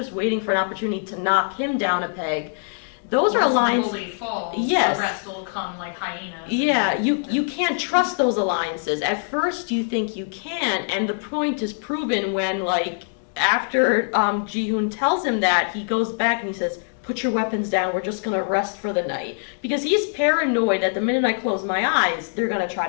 waiting for an opportunity to knock him down a peg. Those are alliances. The bully falls, yes. The rest will come like hyenas. Yeah, you can't trust those alliances. At first you think you can, and the point is proven when, like, after Jihoon tells him that, he goes back and he says, put your weapons down, we're just gonna rest for the night. Because he's paranoid that the minute I close my eyes, they're gonna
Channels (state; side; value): silent; right; digital silence